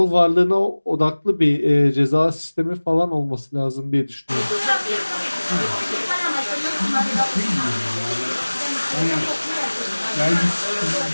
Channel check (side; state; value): both; inverted; correlation -1.00